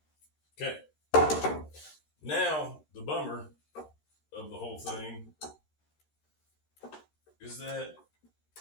Okay. Now, the bummer of the whole thing is that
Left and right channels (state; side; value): late; right; 13 ms